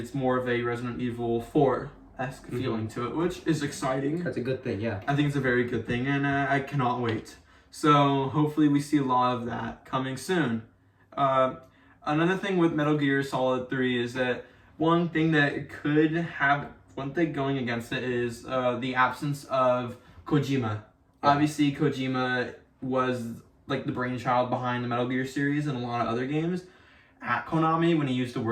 more of a Resident Evil 4-esque feeling to it, which is exciting. That's a good thing, yeah. I think it's a very good thing, and I cannot wait. So hopefully we see a lot of that coming soon. Another thing with Metal Gear Solid 3 is that one thing going against it is the absence of Kojima. Yeah. Obviously, Kojima was like the brainchild behind the Metal Gear series and a lot of other games at Konami when he used to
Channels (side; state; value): both; identical; correlation 1.00